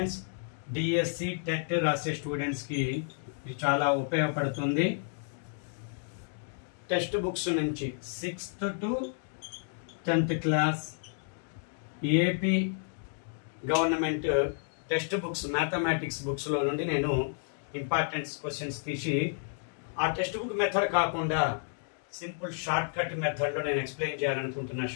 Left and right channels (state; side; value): silent; right; digital silence